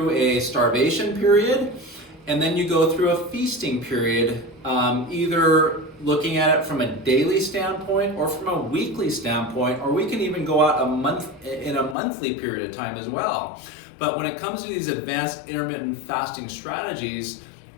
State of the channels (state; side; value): drops out; right; at 12.0 s